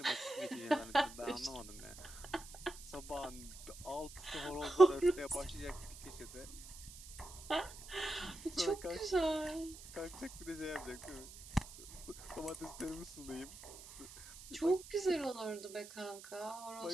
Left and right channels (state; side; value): noise; right; hiss, 15 dB below the sound